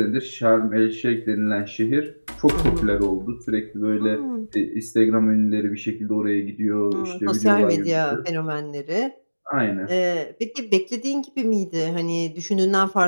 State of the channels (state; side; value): inverted; both; correlation -1.00